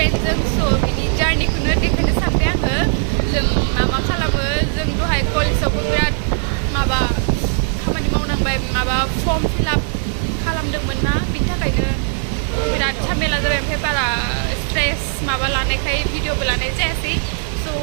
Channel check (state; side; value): silent; left; 65 dB below the other